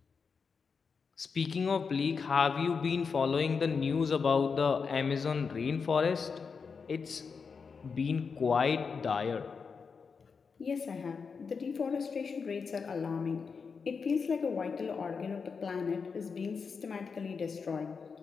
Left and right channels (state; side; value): quieter; right; 5.4 dB